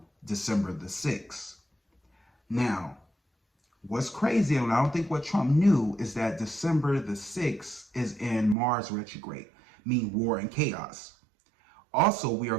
December the 6th. Now, what's crazy, and I don't think what Trump knew, is that December the 6th is in Mars retrograde, meaning war and chaos. Also, we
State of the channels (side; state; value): left; drops out; at 8.6 s